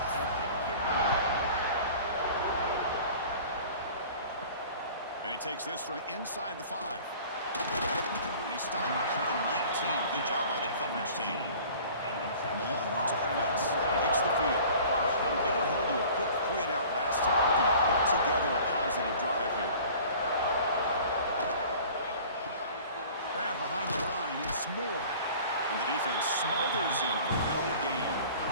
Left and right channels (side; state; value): both; inverted; correlation -0.46